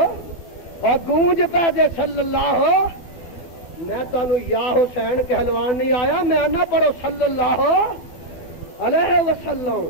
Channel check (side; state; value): right; late; 12 ms